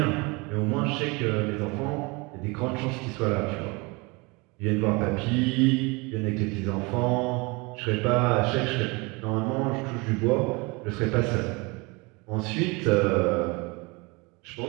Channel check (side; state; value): left; quieter; 27.0 dB